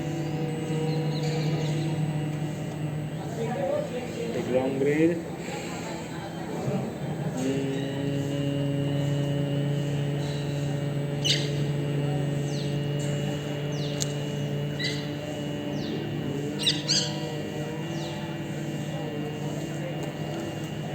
Take a long breath.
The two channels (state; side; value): identical; both; correlation 1.00